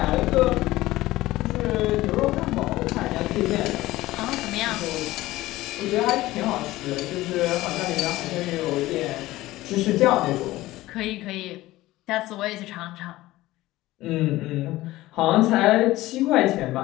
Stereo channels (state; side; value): quieter; right; 17.3 dB